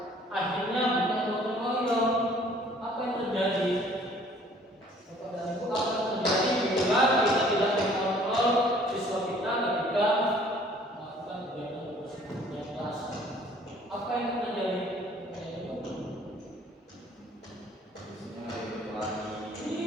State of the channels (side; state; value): both; normal; correlation 0.56